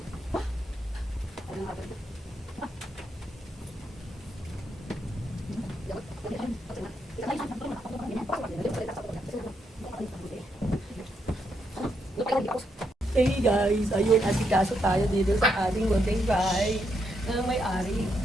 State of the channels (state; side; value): normal; both; correlation 0.79